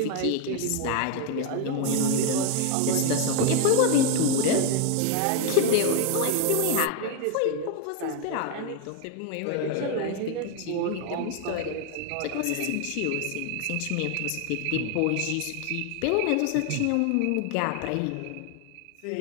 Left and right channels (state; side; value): different; both; correlation 0.01